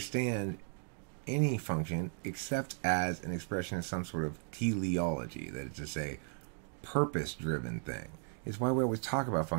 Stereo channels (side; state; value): left; silent; 54 dB below the other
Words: any function except as an expression of some sort of teleology, that is to say, purpose-driven thing. It's why we always talk about